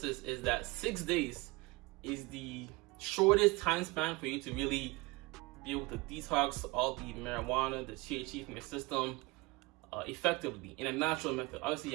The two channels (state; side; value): quieter; left; 23.8 dB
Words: is that 6 days is the shortest time span for you to really be able to detox all the marijuana, the THC from your system effectively in a natural method. Obviously,